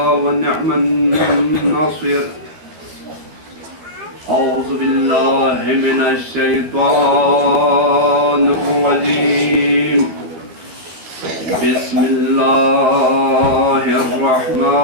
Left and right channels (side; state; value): left; late; 13 ms